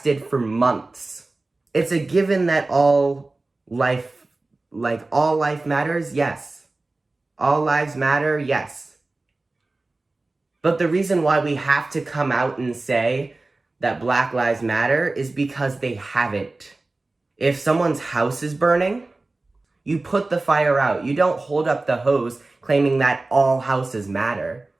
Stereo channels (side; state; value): left; quieter; 3.2 dB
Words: for months. It's a given that all life matters, yes. All lives matter, yes. But the reason why we have to come out and say that Black Lives Matter is because they haven't. If someone's house is burning, you put the fire out. You don't hold up the hose claiming that all houses matter.